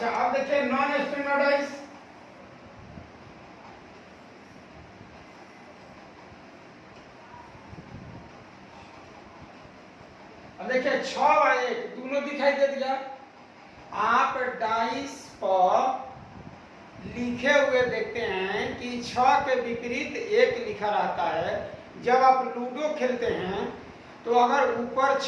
अब देखिए नॉन स्टैंडर्ड डाइस। अब देखिए 6 और 1 दोनों दिखाई दे दिया। आप डाइस पर लिखे हुए देखते हैं कि 6 के विपरीत 1 लिखा रहता है। जब आप लूडो खेलते हैं तो अगर ऊपर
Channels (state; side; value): identical; both; correlation 1.00